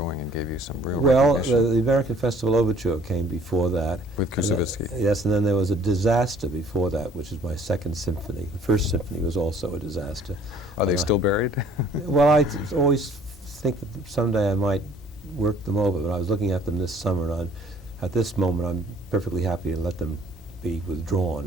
and gave you some real recognition. The American Festival Overture came before that. With Kusevitsky. Yes, and then there was a disaster before that, which is my second symphony. The first symphony was also a disaster. Are they still buried? Well, I always think that someday I might work them over, but I was looking at them this summer, and at this moment I'm perfectly happy to let them be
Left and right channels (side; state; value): both; normal; correlation 0.56